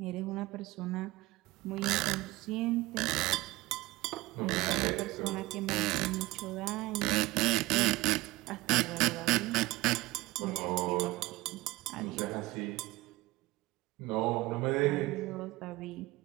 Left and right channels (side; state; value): left; quieter; 20.0 dB